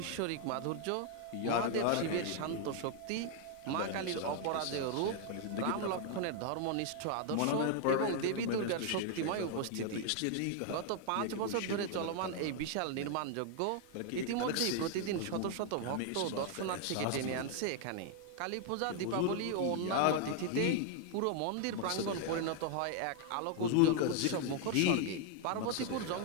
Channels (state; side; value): different; both; correlation 0.00